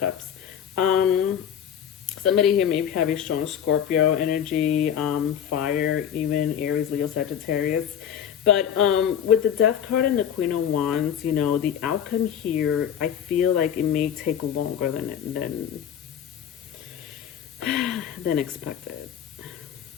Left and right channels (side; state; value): right; quieter; 9.0 dB